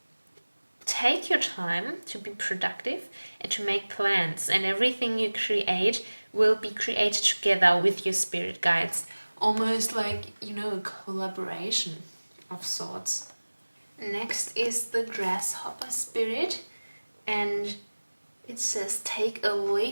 take your time to be productive and to make plans, and everything you create will be created together with your spirit guides. Almost like, a collaboration of sorts. Next is the grasshopper spirit, and it says take a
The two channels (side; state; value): both; inverted; correlation -1.00